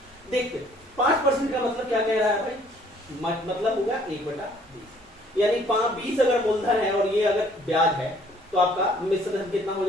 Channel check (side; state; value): both; normal; correlation 0.60